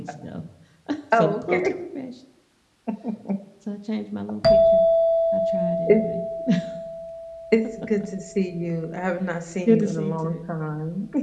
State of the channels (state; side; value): identical; both; correlation 1.00